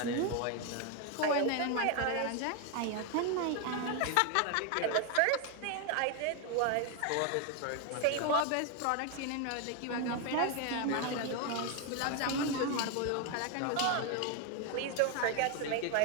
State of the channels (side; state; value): both; different; correlation 0.01